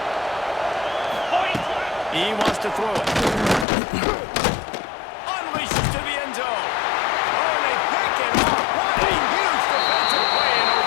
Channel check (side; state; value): right; drops out; at 3.7 s